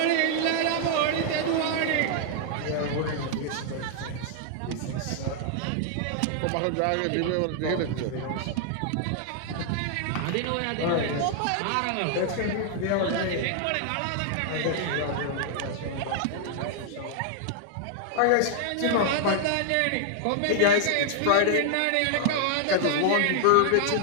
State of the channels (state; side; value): different; both; correlation 0.00